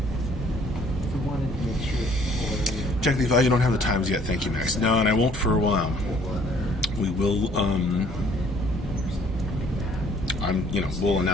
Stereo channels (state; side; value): normal; both; correlation 0.59